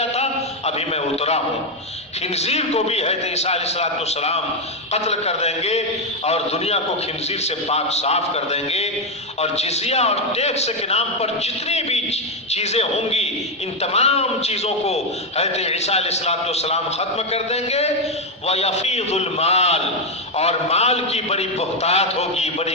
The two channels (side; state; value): both; normal; correlation 0.05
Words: تھا، ابھی میں اترا ہوں۔ خنزیر کو بھی حضرت عیسیٰ علیہ السلام قتل کر دیں گے اور دنیا کو خنزیر سے پاک صاف کر دیں گے، اور جزیہ اور ٹیکس کے نام پر جتنی بھی چیزیں ہوں گی ان تمام چیزوں کو حضرت عیسیٰ علیہ السلام ختم کر دیں گے۔ وَيَفِيضُ الْمَالِ، اور مال کی بڑی بہتات ہوگی، بڑی